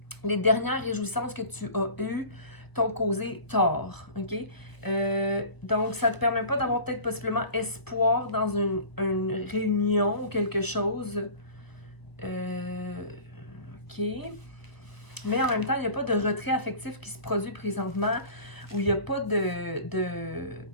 les dernières réjouissances que tu as eues t'ont causé tort, ok? Donc, ça te permet pas d'avoir peut-être possiblement espoir dans une réunion ou quelque chose. Ok. Mais en même temps, il n'y a pas de retrait affectif qui se produit présentement, où il n'y a pas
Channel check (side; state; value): right; late; 1.0 ms